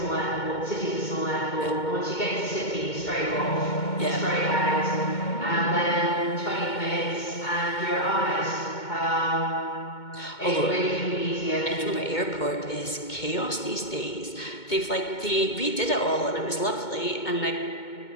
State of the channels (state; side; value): late; right; 2.2 ms